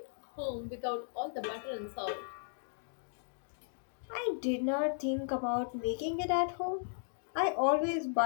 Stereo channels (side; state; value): right; silent; digital silence